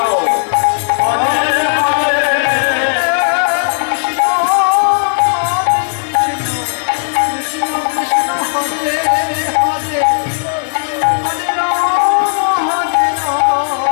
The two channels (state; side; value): silent; right; 65 dB below the other